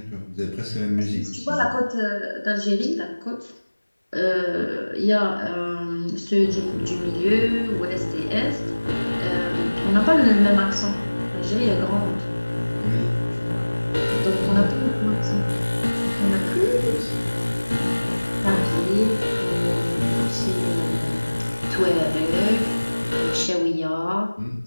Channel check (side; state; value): both; inverted; correlation -1.00